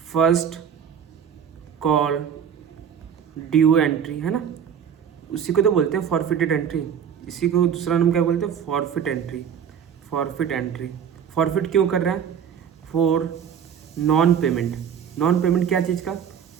first call due entry, है ना, उसी को तो बोलते हैं फॉरफिटेड एंट्री। इसी को दूसरा नाम क्या बोलते हैं, फॉरफिट एंट्री। फॉरफिट क्यों कर रहा है, फॉर नॉन पेमेंट क्या चीज़ का,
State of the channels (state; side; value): quieter; left; 8.1 dB